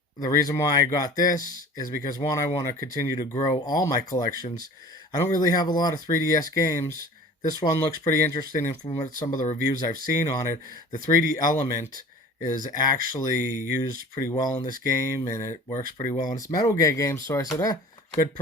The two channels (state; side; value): normal; both; correlation 0.43